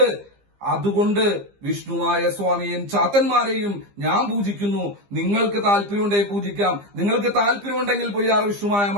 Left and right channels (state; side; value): late; left; 15 ms